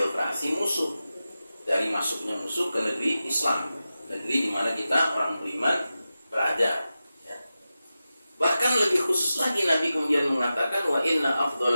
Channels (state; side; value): inverted; both; correlation -0.93